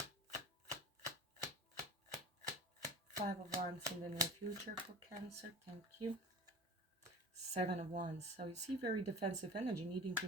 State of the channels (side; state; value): both; normal; correlation 0.37